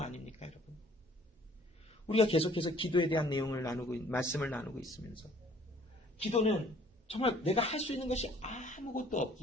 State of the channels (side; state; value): both; normal; correlation 0.57